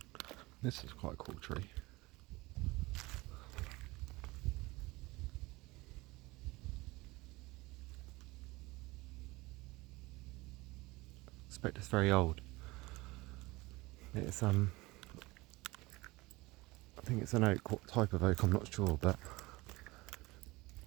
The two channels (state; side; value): quieter; left; 21.8 dB